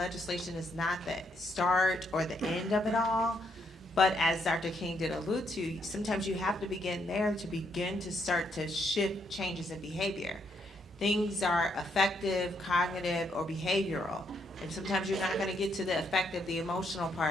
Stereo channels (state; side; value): normal; both; correlation 0.75